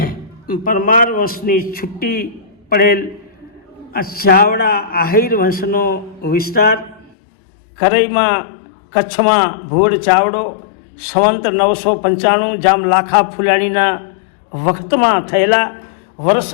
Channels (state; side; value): drops out; right; at 7.1 s